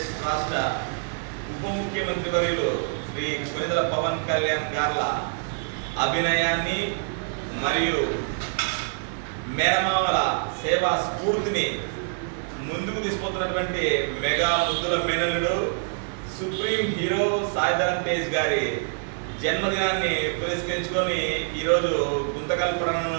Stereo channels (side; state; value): left; silent; 61 dB below the other